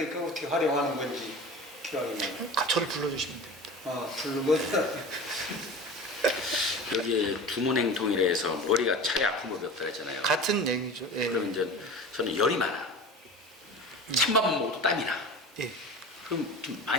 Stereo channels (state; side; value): normal; both; correlation 0.35